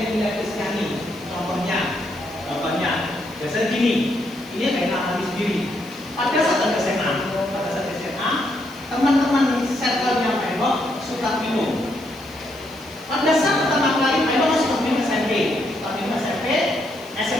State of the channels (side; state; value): left; noise; hiss, 24 dB below the sound